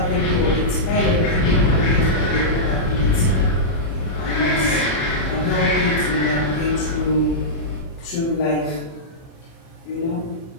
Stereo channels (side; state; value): right; late; 30 ms